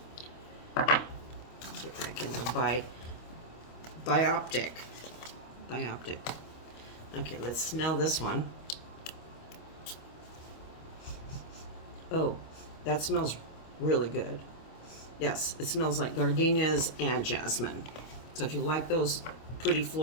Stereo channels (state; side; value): late; right; 25 ms